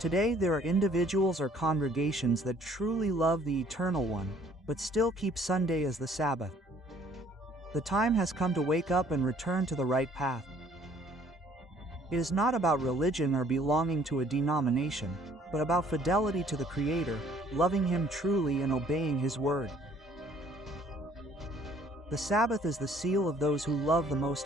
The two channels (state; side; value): normal; both; correlation 0.59